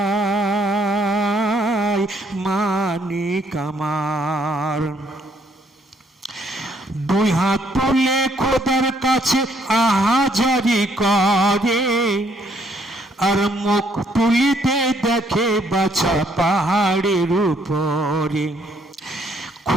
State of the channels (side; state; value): both; normal; correlation 0.68